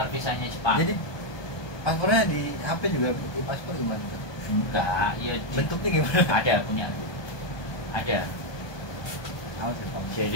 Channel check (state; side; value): late; right; 1.2 ms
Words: visanya Jepang. Jadi paspornya di HP juga di paspor gimana tuh? Enggak, ya Bentuknya gimana? ada punya aku. Ada. Tahu sih, Pak.